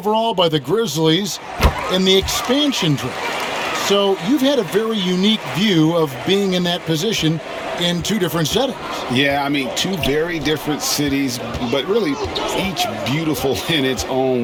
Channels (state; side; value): identical; both; correlation 1.00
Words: by the Grizzlies in the expansion draft. So you've had a very unique view of being in that position in 2 different settings. Yeah, I mean, 2 very different cities, but really each beautiful in its own